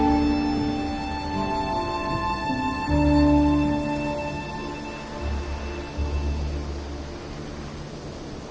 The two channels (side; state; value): both; identical; correlation 1.00